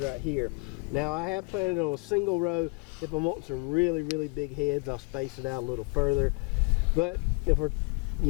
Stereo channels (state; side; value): quieter; right; 30.9 dB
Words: right here. Now I have planted on a single row. If I'm wanting some really, really big heads, I'll space it out a little further. But if we're,